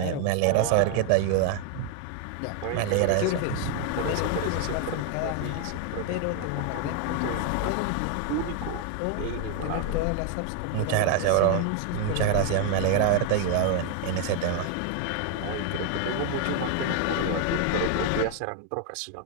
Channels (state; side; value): different; both; correlation 0.00